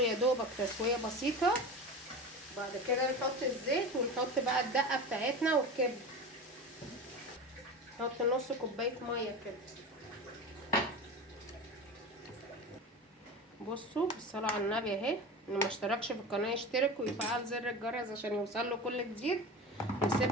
يا دوبك تسويه بسيطه. بعد كده نحط الزيت ونحط بقى الدقه بتاعتنا والكبده. نحط نص كوبايه ميه كده. بصوا بالصلاه على النبي اهي، اللي ما اشتركش في القناه يشترك ويفعل زر الجرس عشان يوصل له كل جديد.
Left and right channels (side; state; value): both; normal; correlation 0.29